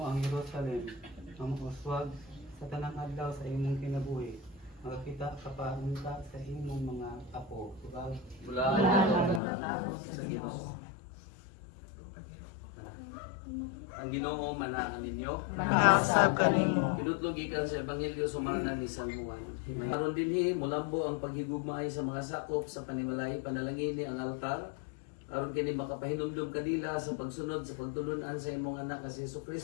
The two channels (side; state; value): right; drops out; at 9.4 s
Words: ang Jerusalem, ang uswag sa tanang adlaw sa imong kinabuhi. Makakita ka pa unta sa imong mga apo. Mula sa Ginoo. Ang Ginoo manakan ninyo. Nakasab kanimo. Kinutlog gikan sa ebanghelyo sumangnan ni San Juan. Maron dinhi mulambo ang paghigugmaay sa mga sakop sa panimalay panalangin ni ang altar. Aron kini makapahinumdum kanila sa pagsunod sa pagtulunan sa imong anak nga si